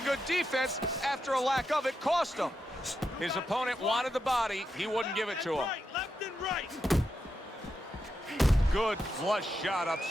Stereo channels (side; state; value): both; normal; correlation 0.86